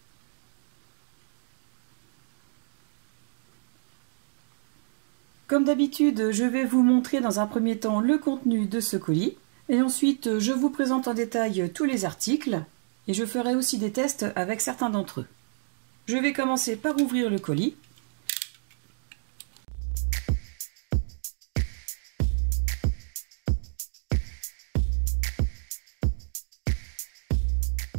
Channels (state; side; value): silent; left; digital silence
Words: Comme d'habitude, je vais vous montrer dans un premier temps le contenu de ce colis, et ensuite je vous présente en détail tous les articles, et je ferai aussi des tests avec certains d'entre eux. Je vais commencer par ouvrir le colis.